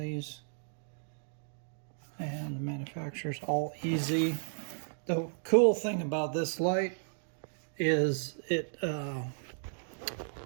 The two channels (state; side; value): silent; left; digital silence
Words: these. And the manufacturer's AllEasy. The cool thing about this light is